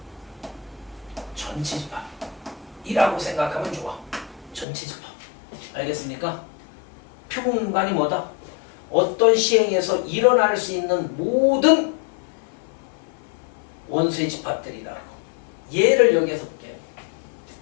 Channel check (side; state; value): right; drops out; at 4.7 s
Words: 전체 집합이라고 생각하면 좋아. 전체 집합. 알겠습니까? 표본 공간이 뭐다? 어떤 시행에서 일어날 수 있는 모든 원소의 집합들이라고. 예를 여기에서 볼게요.